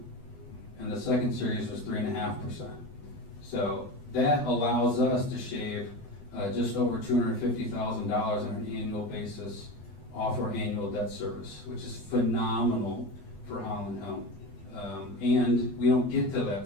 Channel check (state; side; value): late; right; 20 ms